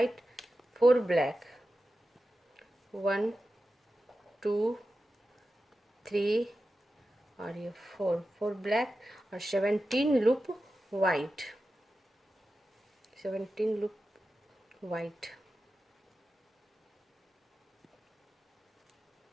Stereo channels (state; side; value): normal; both; correlation 0.92